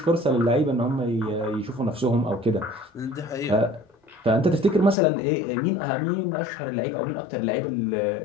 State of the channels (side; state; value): right; drops out; at 5.0 s